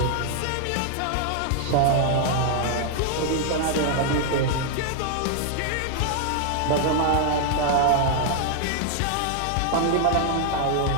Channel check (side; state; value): both; different; correlation 0.00